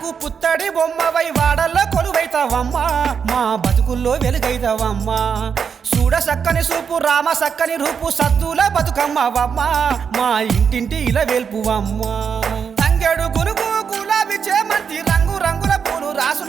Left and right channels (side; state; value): left; quieter; 6.7 dB